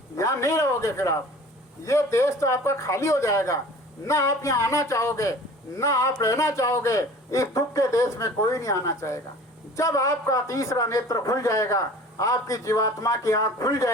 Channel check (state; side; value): normal; both; correlation 0.44